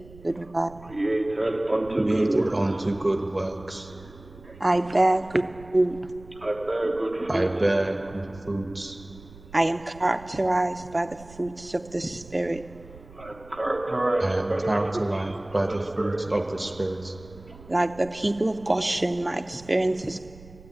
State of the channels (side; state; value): right; noise; rumble, 20 dB below the sound